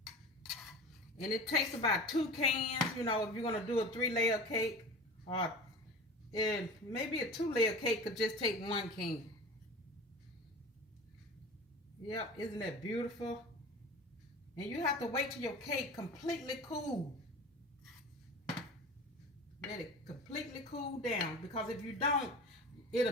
And it takes about 2 cans, you know, if you're going to do a 3-layer cake, or maybe a 2-layer cake could just take 1 can. Yep, isn't that beautiful? And you have to wait till your cake completely cool. Let it completely cool down, because if you don't,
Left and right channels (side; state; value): both; normal; correlation 0.35